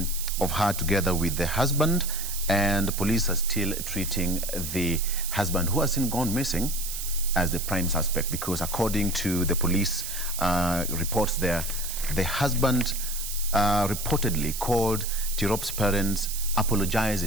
her together with the husband, and the police are still treating the husband, who has since gone missing, as the prime suspect, because according to the police reports there, the husband reportedly called Tirop's parents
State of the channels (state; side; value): noise; right; hiss, 6 dB below the sound